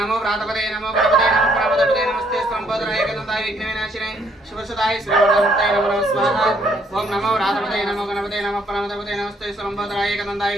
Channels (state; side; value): normal; both; correlation 0.68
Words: व्रातपते नमो गणपते नमो प्रमदपते नमस्ते स्तुलंबोदराय एकदन्ताय विघ्नविनाशिने शिवसदाय श्रीवरदमूर्तये नमो नमः स्वाहा ओम नमो व्रातपते नमो गणपते नमो प्रमदपते नमस्ते स्तुलंबोदराय एकदन्ताय